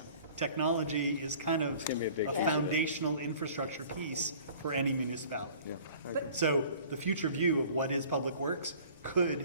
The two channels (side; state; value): both; inverted; correlation -0.49